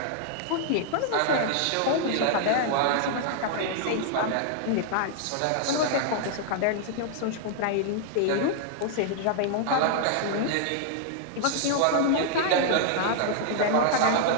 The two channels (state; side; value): different; both; correlation -0.01